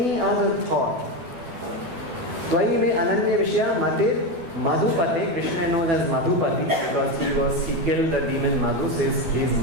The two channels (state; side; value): late; left; 12 ms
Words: other thought. Tvai me Ananya Vishaya Matir Madhupate. Krishna is known as Madhupati because he killed the demon Madhu, so he is